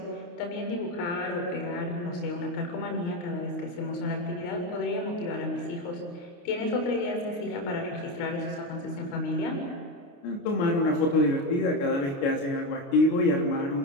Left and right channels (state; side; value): late; right; 29 ms